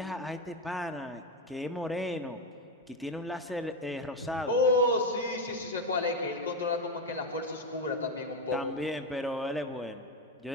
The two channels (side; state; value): both; normal; correlation 0.10